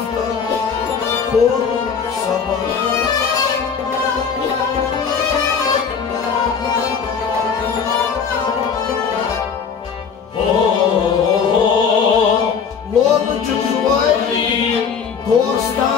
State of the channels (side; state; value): right; quieter; 6.4 dB